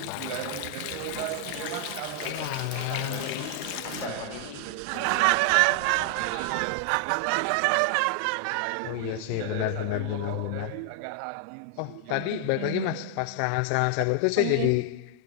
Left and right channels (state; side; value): different; both; correlation 0.00